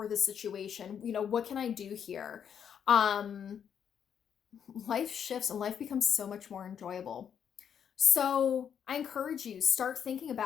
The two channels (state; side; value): quieter; right; 8.2 dB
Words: this situation? What can I do here? Life shifts and life becomes so much more enjoyable. So I encourage you, start thinking